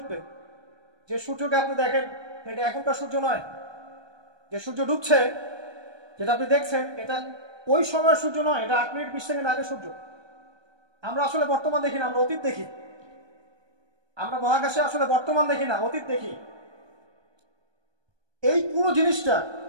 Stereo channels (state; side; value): late; left; 1.2 ms